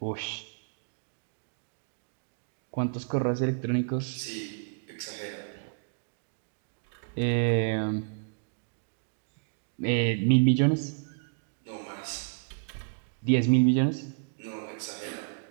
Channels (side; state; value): left; silent; digital silence